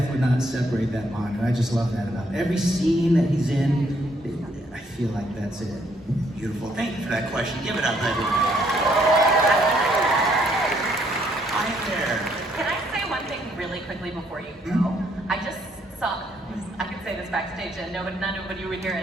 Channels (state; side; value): normal; both; correlation 0.69